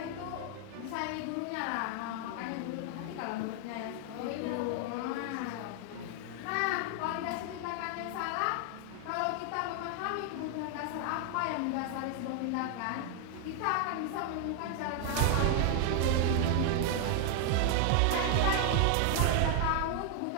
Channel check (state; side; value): different; both; correlation 0.00